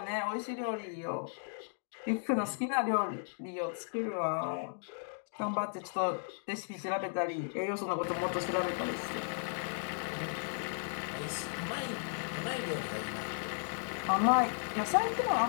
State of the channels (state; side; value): silent; right; digital silence